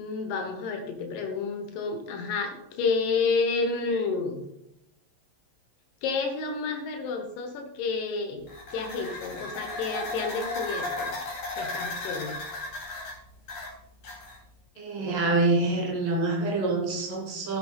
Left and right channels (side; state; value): right; late; 11 ms